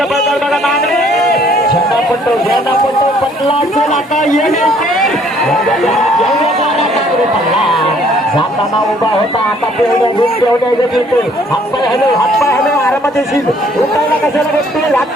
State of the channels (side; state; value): both; normal; correlation 0.61